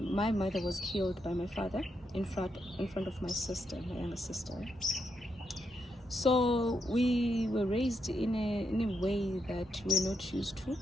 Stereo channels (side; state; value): both; normal; correlation 0.81